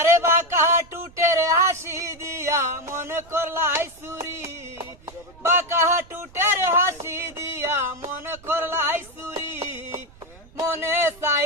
বাঁকা টুটের হাসি দিয়া মনে করলাই চুরি, বাঁকা টুটের হাসি দিয়া মনে করলাই চুরি। মনে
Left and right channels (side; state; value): right; noise; rumble, 23 dB below the sound